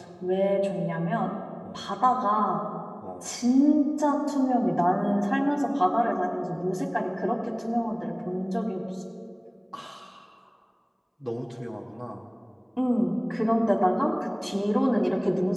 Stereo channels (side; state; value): both; identical; correlation 1.00